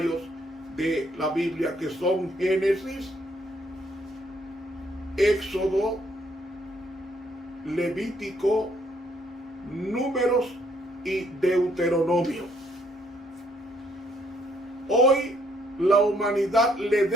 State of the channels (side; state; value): both; normal; correlation 0.69